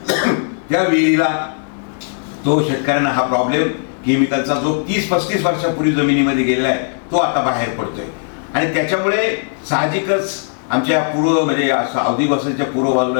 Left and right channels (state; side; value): silent; right; digital silence